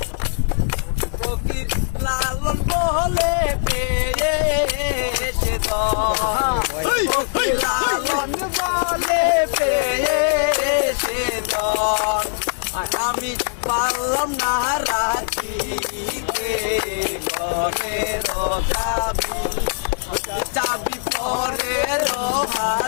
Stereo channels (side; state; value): right; silent; digital silence